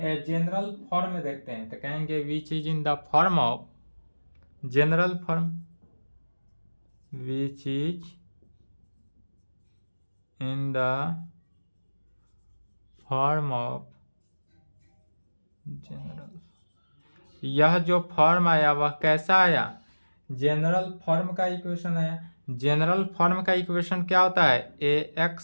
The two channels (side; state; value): both; inverted; correlation -1.00